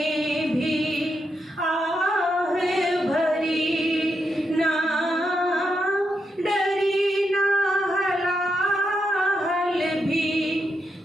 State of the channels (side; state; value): both; normal; correlation 0.83